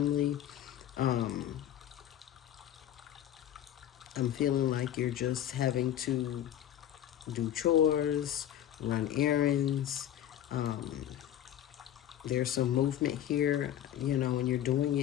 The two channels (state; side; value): quieter; right; 11.2 dB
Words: I'm feeling like you're just having to do chores, run errands. There's some movement here, and you're doing